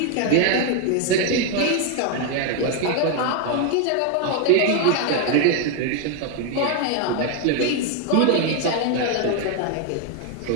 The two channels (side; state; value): both; different; correlation 0.01